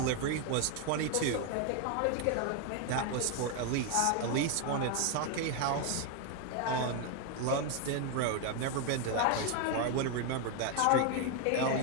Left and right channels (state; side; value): different; both; correlation 0.01